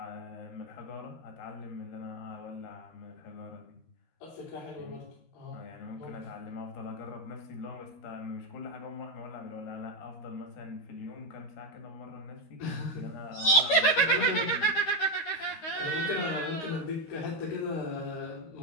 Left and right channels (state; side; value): late; right; 13 ms